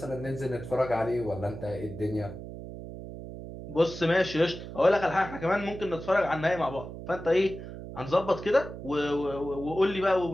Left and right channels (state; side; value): noise; right; hum, 11 dB below the sound